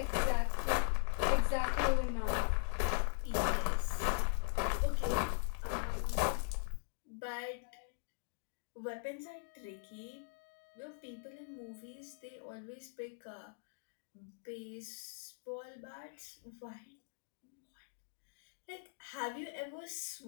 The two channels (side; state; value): right; silent; digital silence